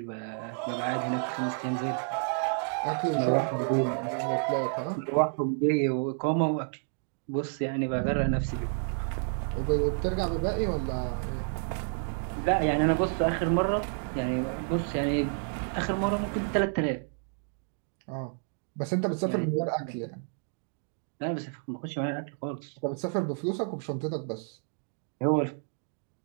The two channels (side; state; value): left; silent; 58 dB below the other